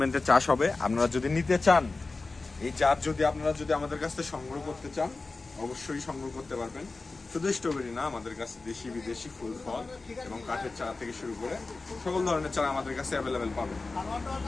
চাষ হবে। আপনারা যদি নিতে চান, এই জাত যদি আপনারা যদি আমাদের কাছ থেকে সংগ্রহ করতে চান, অবশ্যই সংগ্রহ করতে পারবেন। শুধু স্ট্রবেরি না, আমাদের কাছে দেশি বিদেশি ফুল ফল এবং কাঠের চারা থেকে শুরু করে সকল ধরনের চারা আমাদের কাছে অ্যাভেলেবেল পাবেন।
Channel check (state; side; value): quieter; right; 3.6 dB